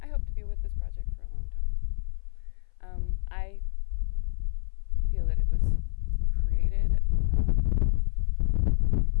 I feel that it was created,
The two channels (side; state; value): right; silent; 57 dB below the other